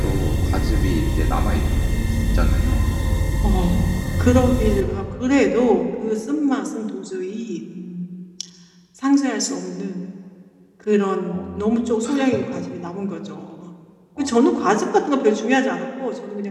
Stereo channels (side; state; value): both; identical; correlation 1.00